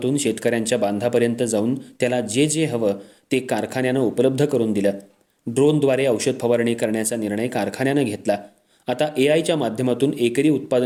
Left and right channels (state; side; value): identical; both; correlation 1.00